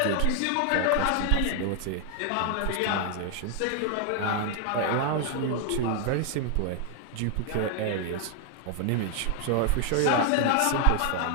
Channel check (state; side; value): different; both; correlation 0.00